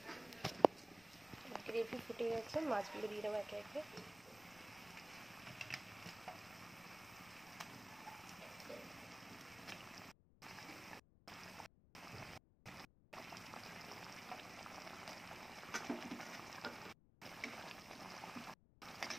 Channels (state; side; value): noise; left; rumble, 22 dB below the sound